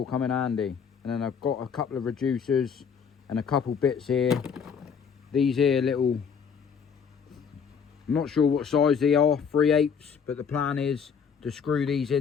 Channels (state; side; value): quieter; right; 6.6 dB